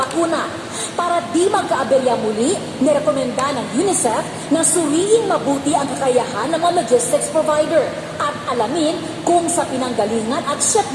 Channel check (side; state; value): both; identical; correlation 1.00